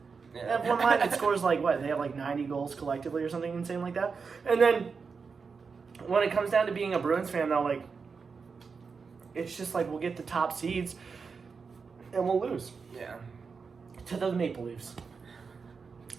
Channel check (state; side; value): quieter; left; 5.2 dB